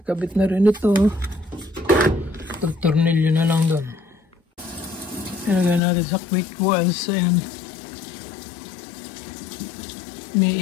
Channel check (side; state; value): right; drops out; at 5.8 s